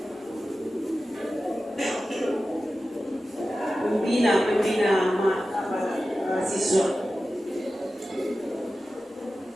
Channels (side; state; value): both; normal; correlation 0.94